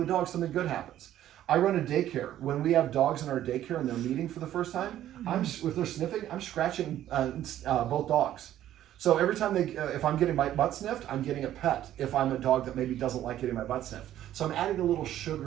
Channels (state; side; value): quieter; left; 12.3 dB